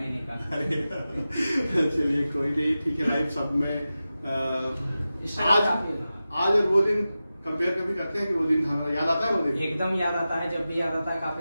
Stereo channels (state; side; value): inverted; both; correlation -0.94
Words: का। अरे चलिए कोई नहीं, ठीक है। लाइफ सब में स्ट्रगल काफी था। आज और वो दिन कंपेयर कभी करते हैं कि वो दिन हमारा याद आता है? वो दिन एकदम याद आता है, जब भी याद आता है काफी